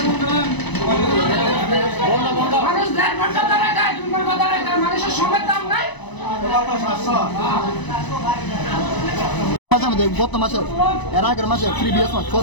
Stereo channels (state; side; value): late; right; 1.0 ms